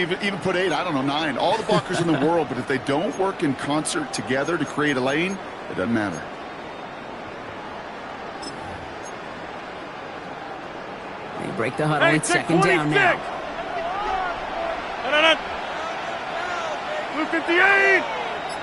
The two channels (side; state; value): both; identical; correlation 1.00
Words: put 8, I don't know, 9. All the blockers in the world, but if they don't work in concert together to create a lane, it doesn't matter. They break the huddle. It's 2nd down now. 258.